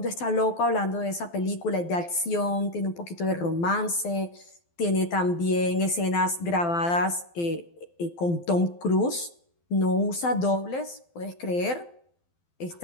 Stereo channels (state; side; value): late; right; 12 ms